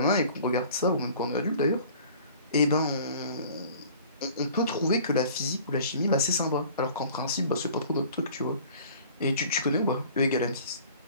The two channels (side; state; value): both; inverted; correlation -0.48